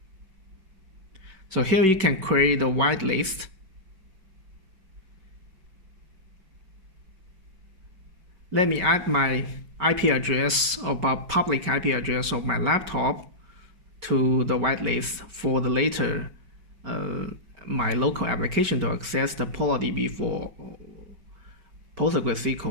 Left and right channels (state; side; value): late; left; 5.2 ms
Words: So here you can create a whitelist. Let me add my IP address about public IP address of my laptop to the whitelist for the later my local application to access the PolarDB for